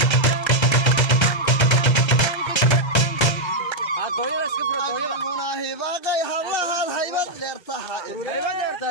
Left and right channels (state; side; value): late; right; 1.3 ms